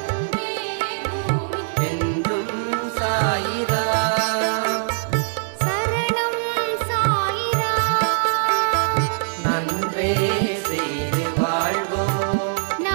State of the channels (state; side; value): silent; left; digital silence